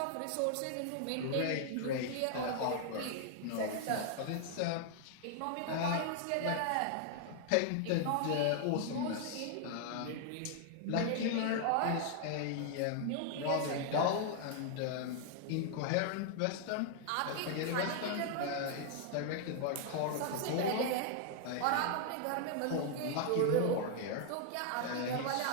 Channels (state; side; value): different; both; correlation 0.00